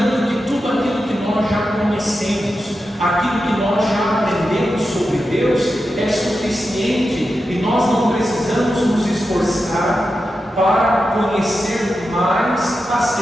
que tudo aquilo que nós já conhecemos, aquilo que nós já aprendemos sobre Deus é suficiente e nós não precisamos nos esforçar para conhecer mais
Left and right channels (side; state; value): both; normal; correlation 0.90